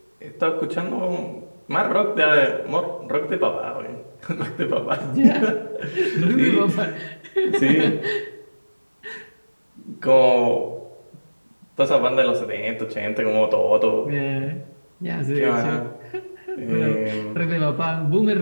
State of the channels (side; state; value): both; inverted; correlation -1.00